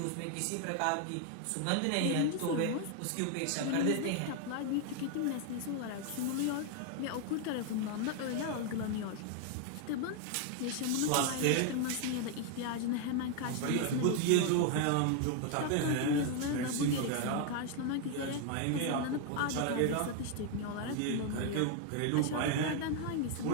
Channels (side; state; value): both; different; correlation 0.01